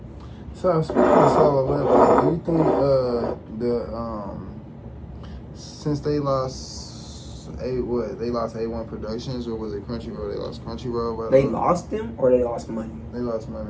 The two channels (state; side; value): identical; both; correlation 1.00